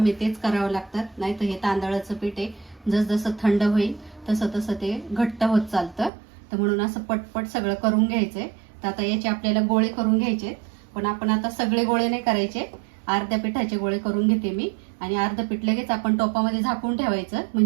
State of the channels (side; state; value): left; drops out; at 6.1 s